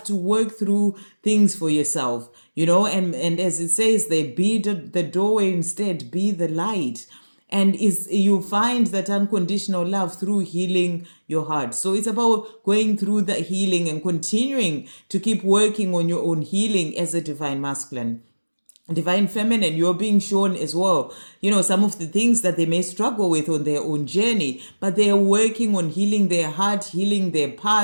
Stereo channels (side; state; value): both; inverted; correlation -1.00